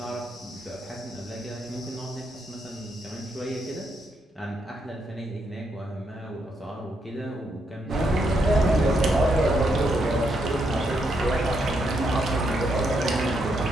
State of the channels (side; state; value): both; normal; correlation 0.78